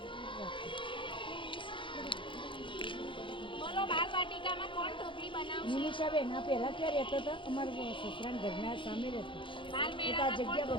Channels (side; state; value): right; late; 0.24 ms